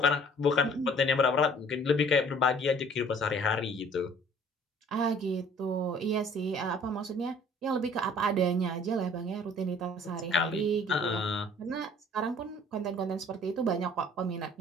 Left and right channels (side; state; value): both; normal; correlation 0.53